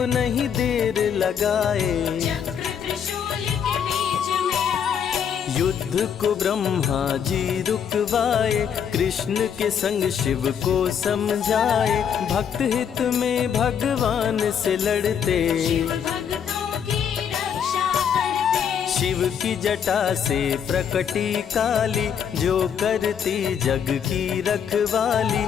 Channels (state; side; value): quieter; right; 7.9 dB